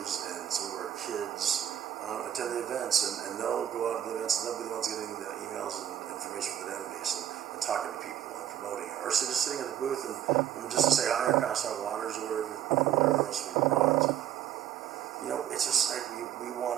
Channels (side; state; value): left; quieter; 10.8 dB